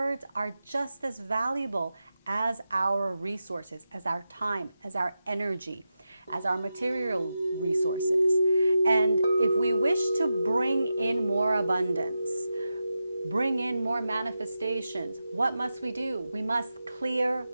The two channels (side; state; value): both; inverted; correlation -0.90